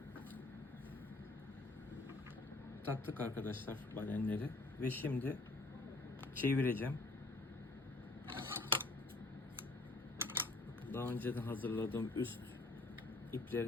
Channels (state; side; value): quieter; right; 3.0 dB